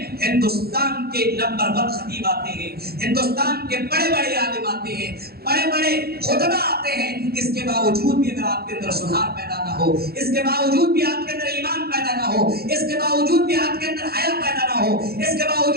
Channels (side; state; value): left; late; 0.45 ms